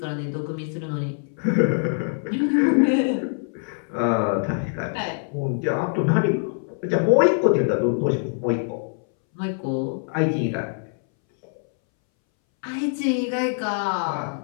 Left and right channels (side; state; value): right; silent; 62 dB below the other